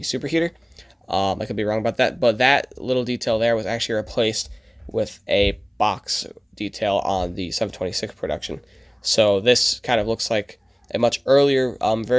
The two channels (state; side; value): identical; both; correlation 1.00